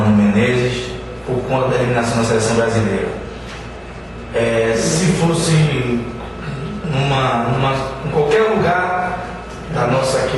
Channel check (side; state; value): both; identical; correlation 1.00